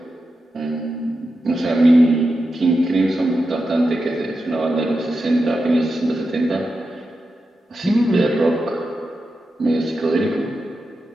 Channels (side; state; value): both; normal; correlation 0.89